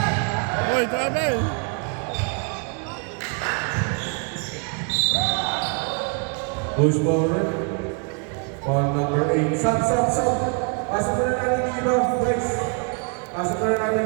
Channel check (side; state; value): left; quieter; 36.9 dB